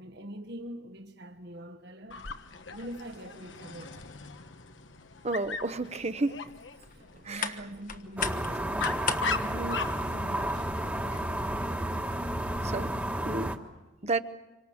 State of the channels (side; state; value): both; normal; correlation 0.54